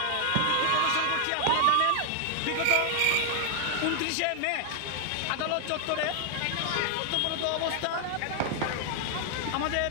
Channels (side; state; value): both; different; correlation 0.00